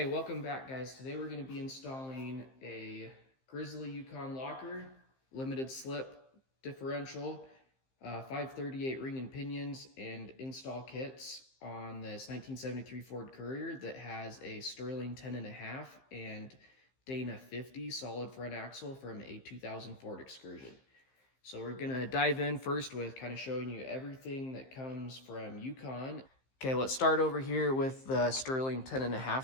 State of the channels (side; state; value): right; late; 15 ms